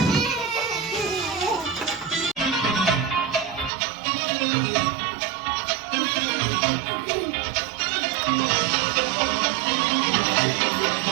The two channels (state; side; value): drops out; left; at 3.7 s